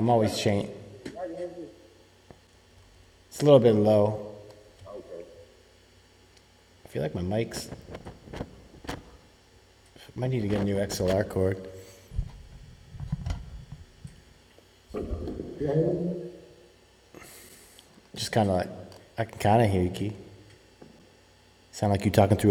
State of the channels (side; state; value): both; identical; correlation 1.00